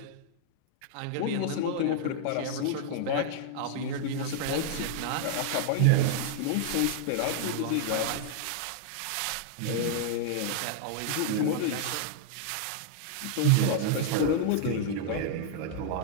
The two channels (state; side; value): different; both; correlation -0.01